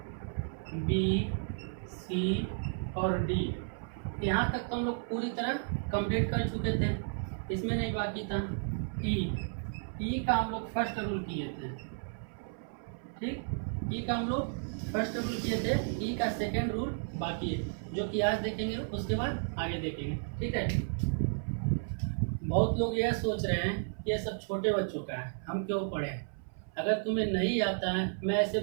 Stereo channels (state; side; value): silent; left; 56 dB below the other